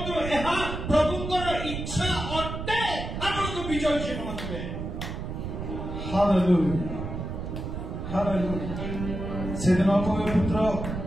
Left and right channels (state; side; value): noise; right; rumble, 6 dB below the sound